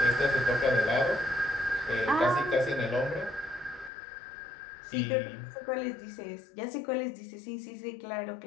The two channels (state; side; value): drops out; right; at 3.9 s